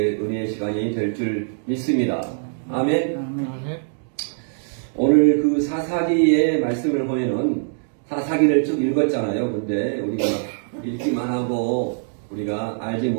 은혜의 시간이 될 줄 믿습니다. 아멘. 오늘 그 사사기의 말씀을 보면은 사사기를 쭉 읽었잖아요. 근데 우리가 읽기만 하고 우리가 알지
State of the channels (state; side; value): silent; left; digital silence